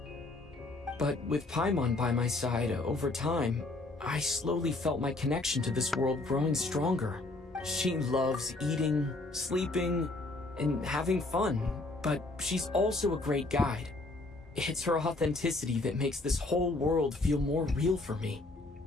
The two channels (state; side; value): quieter; right; 3.0 dB